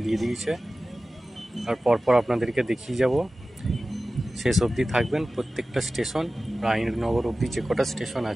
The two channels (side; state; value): both; normal; correlation 0.96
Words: দিয়ে দিয়েছে। আর পরপর আপনাদেরকে দেখিয়ে যাব। শেষ অবধি থাকবেন। প্রত্যেকটা স্টেশন রায়নগর অবধি যে কটা স্টেশন